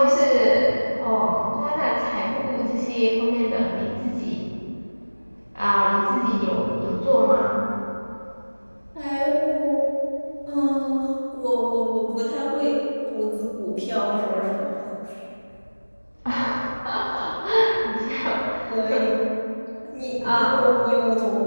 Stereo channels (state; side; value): inverted; both; correlation -1.00